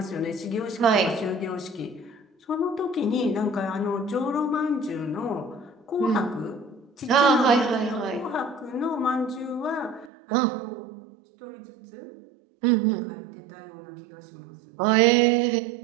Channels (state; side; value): drops out; left; at 10.1 s